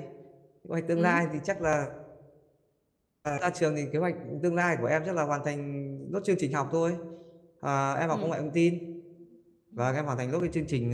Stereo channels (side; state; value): both; identical; correlation 1.00